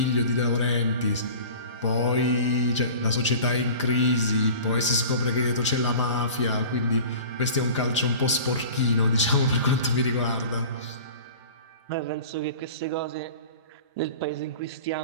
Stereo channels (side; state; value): both; inverted; correlation -0.39